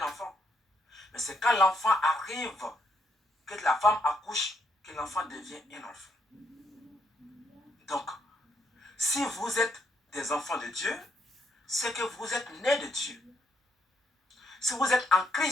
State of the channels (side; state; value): both; normal; correlation 0.75